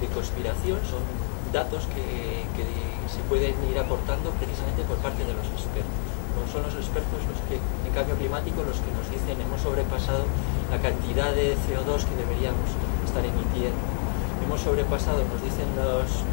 conspiración, son datos que se pueden ir aportando precisamente por parte de los expertos. No son los expertos los que, en cambio climático, los que nos dicen hemos sobrepasado la cantidad de CO2 que deberíamos estar emitiendo. Hemos sobrepasado, nos dicen los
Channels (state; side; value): silent; right; digital silence